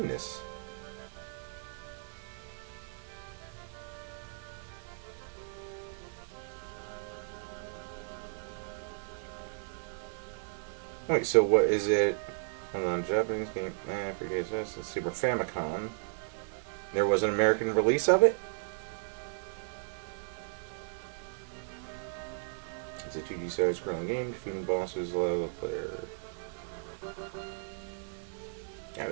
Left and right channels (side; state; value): left; silent; digital silence